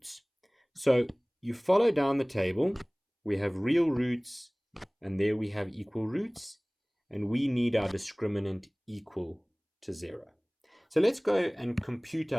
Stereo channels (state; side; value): identical; both; correlation 1.00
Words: So you follow down the table, we have real roots, and there we have equal roots, and we need our discriminant equal to 0. So let's go and compute